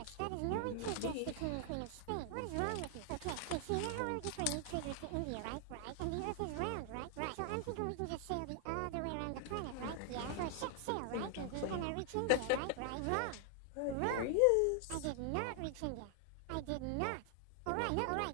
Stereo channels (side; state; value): both; different; correlation 0.00